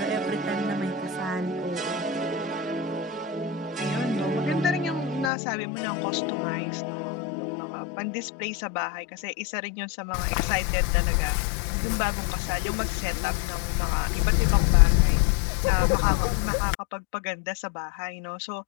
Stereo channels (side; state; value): right; drops out; at 5.3 s